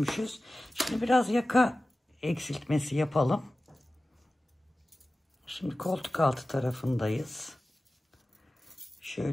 Şimdi biraz yaka eksiltmesi yapalım. Şimdi koltuk altı tarafındayız.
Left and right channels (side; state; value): both; normal; correlation 0.96